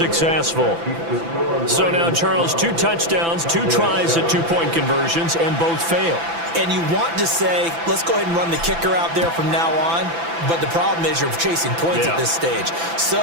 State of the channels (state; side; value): late; left; 6.0 ms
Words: So now, Charles, 2 touchdowns, 2 tries at 2-point conversions, and both fail. And you want to say, let's go ahead and run the kicker out there from now on. But the problem is you're chasing points at this stage. So